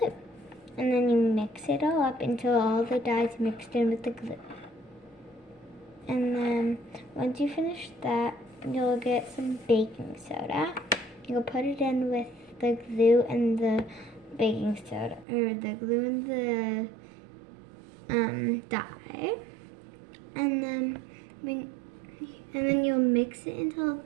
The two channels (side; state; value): left; drops out; at 15.2 s